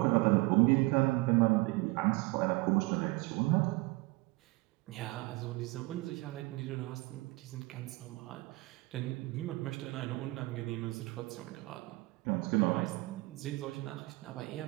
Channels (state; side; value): quieter; left; 22.9 dB